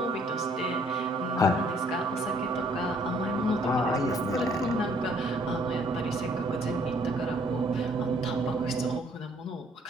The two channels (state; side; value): normal; both; correlation 0.63